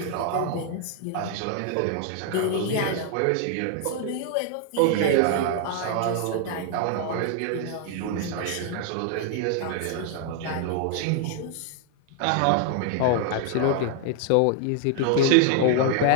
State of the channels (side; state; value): both; different; correlation 0.00